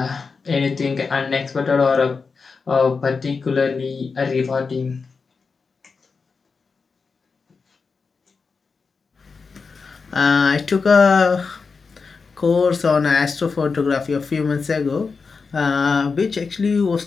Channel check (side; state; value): right; quieter; 4.8 dB